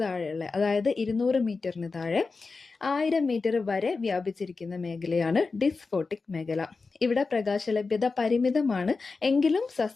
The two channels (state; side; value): quieter; right; 4.2 dB